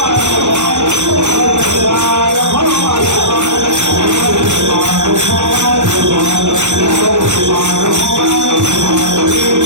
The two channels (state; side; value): late; left; 0.84 ms